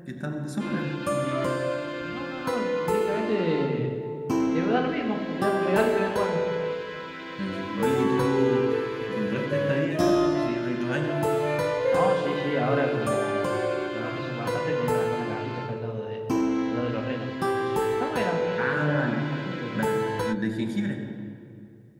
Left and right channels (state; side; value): identical; both; correlation 1.00